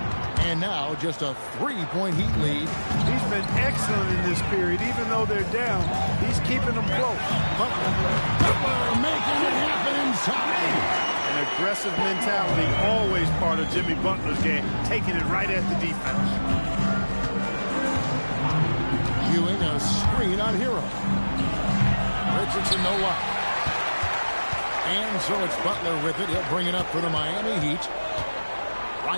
And now just a 3-point Heat lead. He's been excellent in this period. Even though they're down, he's keeping them close. Butler making it happen inside. An aggressive mentality, always part of Jimmy Butler's game, taking it right at the defense. Ewing a screen on Hero. Richardson no luck. And so it's Butler with it. He'll bring it up for the Miami Heat.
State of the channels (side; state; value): both; inverted; correlation -1.00